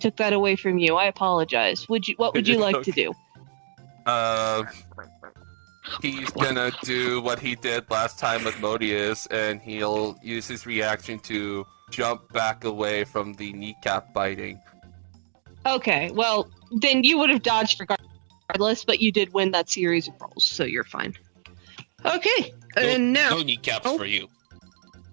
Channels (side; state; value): left; silent; digital silence